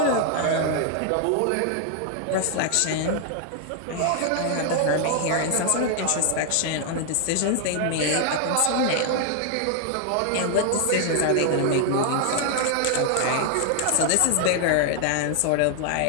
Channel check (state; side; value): different; both; correlation 0.00